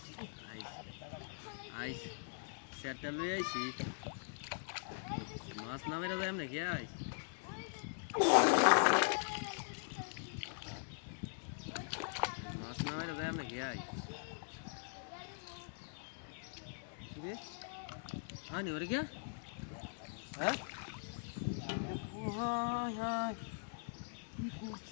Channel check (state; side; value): silent; right; digital silence